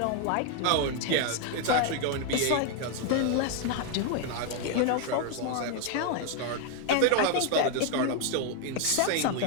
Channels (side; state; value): both; different; correlation 0.01